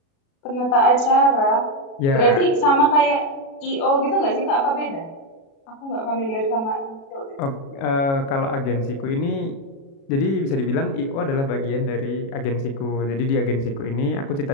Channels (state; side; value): late; right; 36 ms